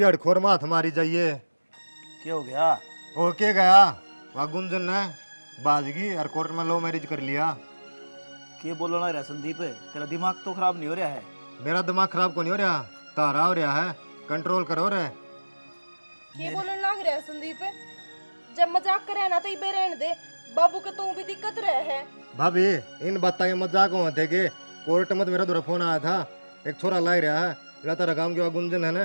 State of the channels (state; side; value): inverted; both; correlation -1.00